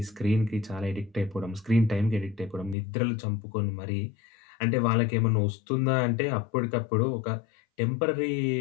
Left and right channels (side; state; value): right; drops out; at 2.8 s